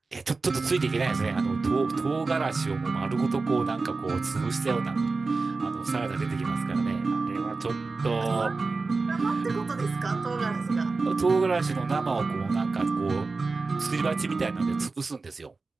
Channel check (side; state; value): left; quieter; 3.9 dB